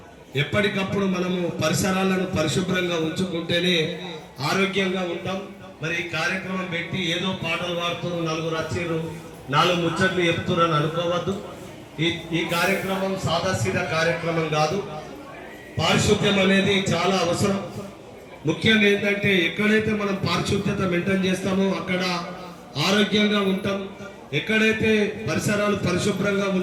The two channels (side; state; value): both; identical; correlation 1.00